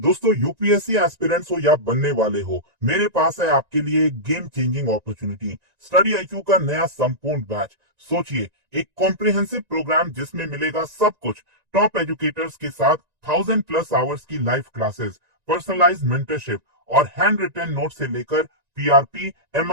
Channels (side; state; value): left; late; 1.9 ms